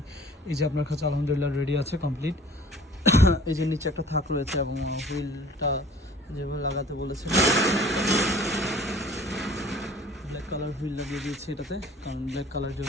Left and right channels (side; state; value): both; normal; correlation 0.49